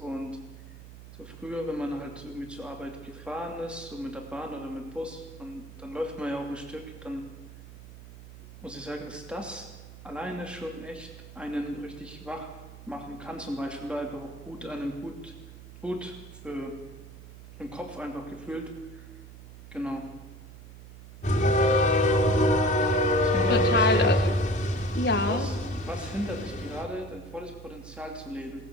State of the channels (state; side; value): noise; right; hum, 16 dB below the sound